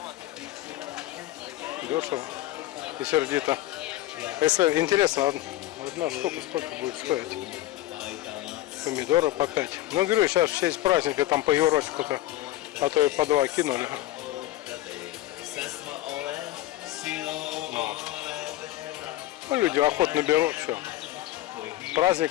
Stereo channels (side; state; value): right; quieter; 15.4 dB